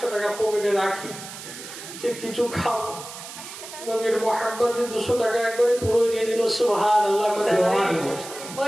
টাকা পকেটে রাখি, যে কিছু খাও। নবীর মোহাব্বতে 200 টাকা একবারে পুরো দিয়ে দিল। সুবহানাল্লাহ।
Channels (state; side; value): noise; right; hiss, 12 dB below the sound